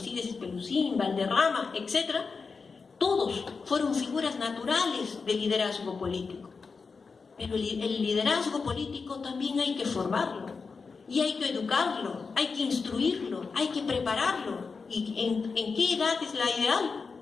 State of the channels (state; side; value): quieter; right; 4.8 dB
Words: Espelucín, Valderrama, etc., todos fueron figuras naturales de liderazgo político. Pero el liderazgo político también hay que formarlo, y hay que educarlo, hay que instruirlo, hay que prepararlo. ¿Y en qué edad es la ideal?